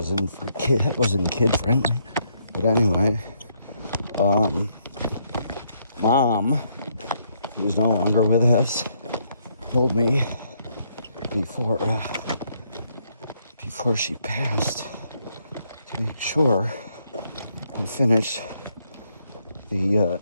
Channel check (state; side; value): inverted; both; correlation -0.74